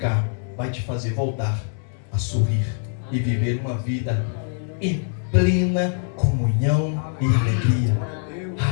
vai te fazer voltar a sorrir e viver uma vida em plena comunhão e alegria.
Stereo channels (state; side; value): silent; right; 63 dB below the other